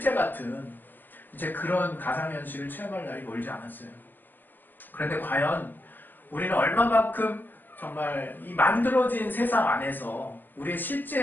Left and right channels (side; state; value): right; late; 0.092 ms